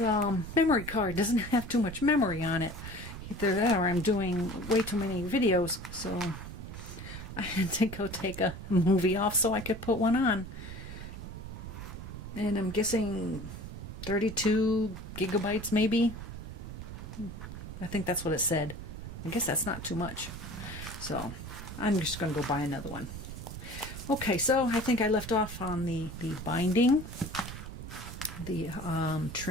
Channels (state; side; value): noise; right; rumble, 10 dB below the sound